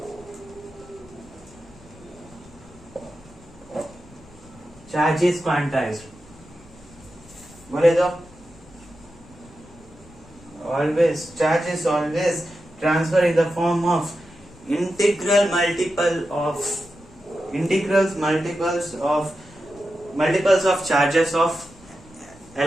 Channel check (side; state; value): left; noise; rumble, 24 dB below the sound